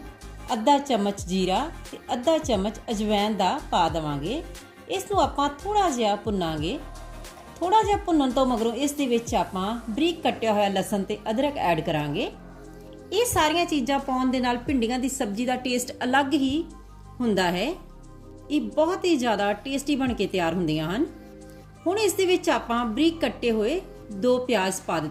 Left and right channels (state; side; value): identical; both; correlation 1.00